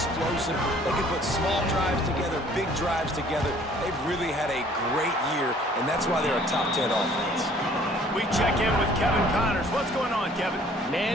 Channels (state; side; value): normal; both; correlation 0.56